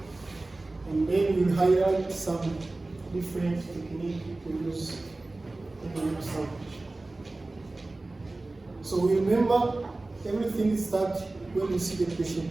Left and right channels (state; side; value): quieter; left; 3.0 dB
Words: And then we'll highlight some different techniques to use in the limb salvage. So remember, everything starts when you see the